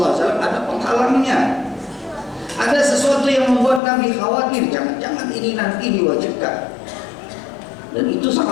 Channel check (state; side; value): drops out; right; at 3.8 s